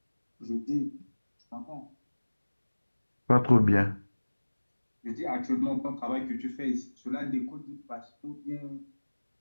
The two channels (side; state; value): both; inverted; correlation -1.00